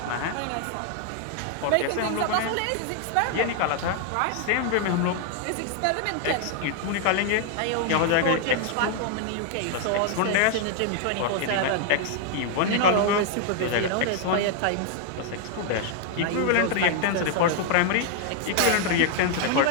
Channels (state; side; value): different; both; correlation 0.00